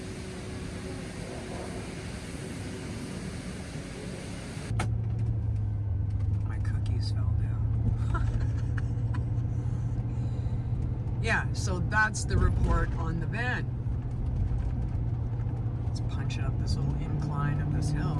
My cookies fell down. Yeah, so that's the report on the van. Let's punch up this little incline of this hill,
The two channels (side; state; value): both; identical; correlation 1.00